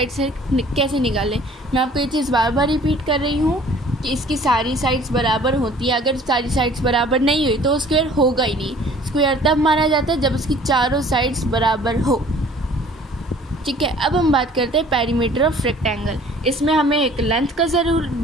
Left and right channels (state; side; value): normal; both; correlation 0.52